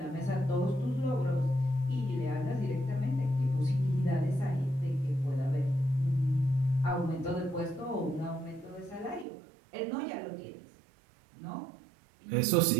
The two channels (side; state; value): left; drops out; at 9.2 s